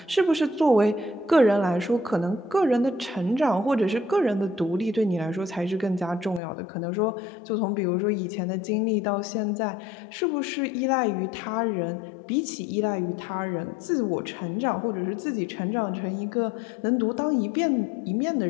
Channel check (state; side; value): drops out; right; at 6.4 s